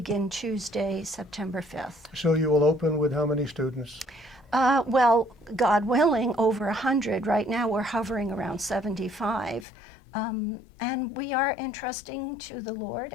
Tuesday, September 5th. So you will open with how many students? Well, God willing, over 100. Right now we're hovering around 75. And we are entrusting to the Lord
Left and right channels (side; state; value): right; drops out; at 9.7 s